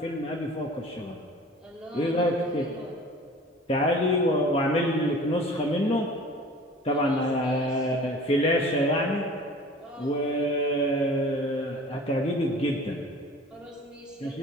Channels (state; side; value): normal; both; correlation 0.44